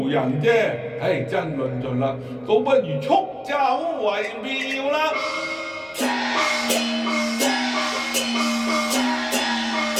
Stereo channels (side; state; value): both; identical; correlation 1.00